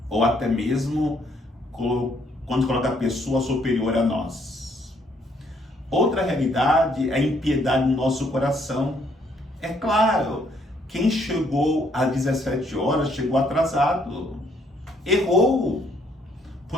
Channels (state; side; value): normal; both; correlation 0.68